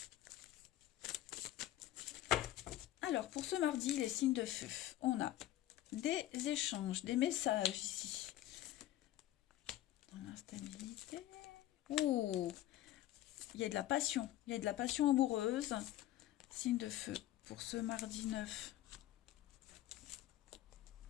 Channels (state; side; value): quieter; right; 14.1 dB